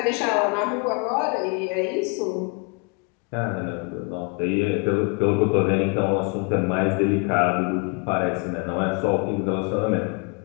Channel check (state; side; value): quieter; right; 32.4 dB